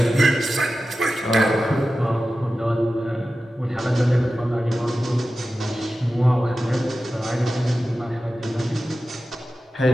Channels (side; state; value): both; normal; correlation 0.94